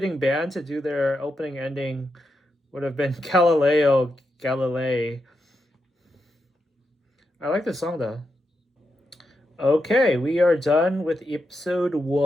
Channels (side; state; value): both; normal; correlation 0.85